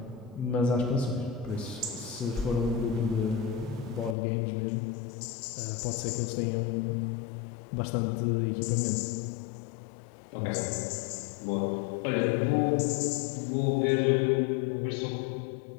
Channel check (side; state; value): right; drops out; at 4.2 s